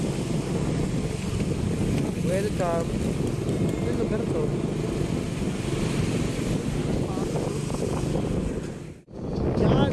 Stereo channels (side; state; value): both; identical; correlation 1.00